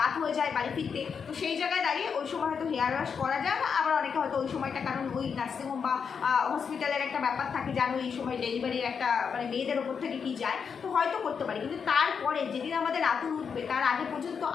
হয়ে যায় বাড়ি ফিরতে, তো সেই জায়গায় দাঁড়িয়ে ওই সময় হয়তো হেয়ার ওয়াশ করা যায় না। আবার অনেকে হয়তো ওই সময়টা কারণ ওই নার্সিংহোম বা হসপিটালের একটা ব্যাপার থাকে, জানো এই সময় ডেলিভারির একটা মানে মেয়েদের ওপর থেকে কি যায়, তো হয়তো করতে পারি, কিন্তু তারপরে যেদিন আমাদের আতুর উঠবে তার আগে পর্যন্ত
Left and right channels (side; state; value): right; quieter; 6.4 dB